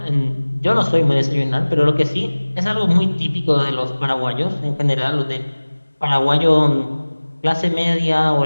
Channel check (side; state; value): both; inverted; correlation -1.00